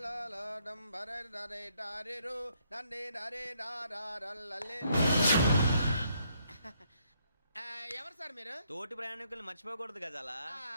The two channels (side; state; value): both; inverted; correlation -0.72